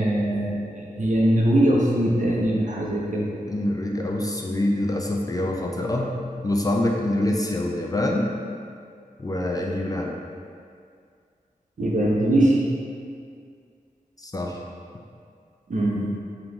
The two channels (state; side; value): normal; both; correlation 0.85